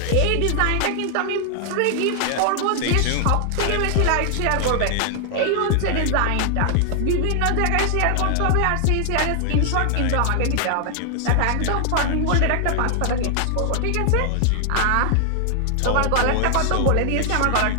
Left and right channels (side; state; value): both; different; correlation 0.00